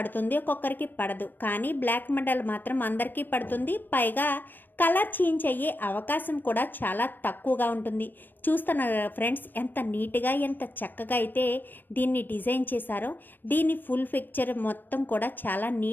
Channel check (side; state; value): right; late; 0.092 ms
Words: ఒక్కొక్కరికి పడదు. కానీ బ్లాక్ మెటల్ మాత్రం అందరికీ పడుతుంది. పైగా కలర్ చేంజ్ అయ్యే అవకాశం కూడా చాలా తక్కువగా ఉంటుంది. చూస్తున్నారు ఫ్రెండ్స్, ఎంత నీట్గా, ఎంత చక్కగా అయితే దీన్ని డిజైన్ చేశారో. దీని ఫుల్ పిక్చర్ మొత్తం కూడా చాలా